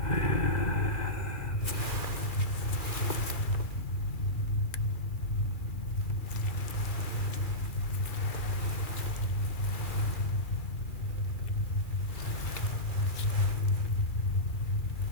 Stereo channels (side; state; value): right; late; 2.4 ms